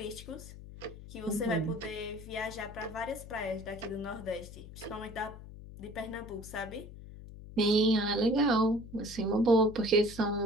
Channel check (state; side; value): noise; left; hum, 15 dB below the sound